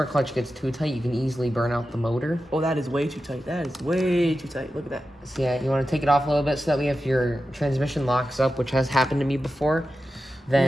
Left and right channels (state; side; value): normal; both; correlation 0.92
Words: clutch gets too tight, you can easily burn out the motor. Oh, that is way too tight. That is way too tight. Look at that. So yeah, you want to take it off a little bit so that way if your transmission locks up, which has happened to me before,